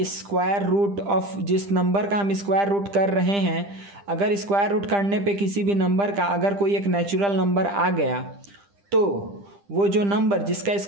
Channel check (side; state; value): left; late; 10 ms